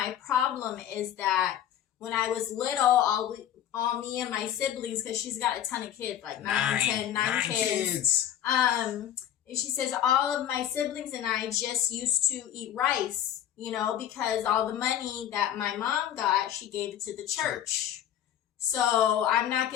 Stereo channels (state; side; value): quieter; right; 10.8 dB